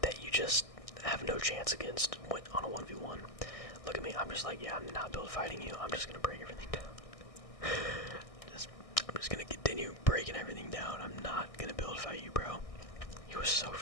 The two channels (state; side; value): late; right; 1.6 ms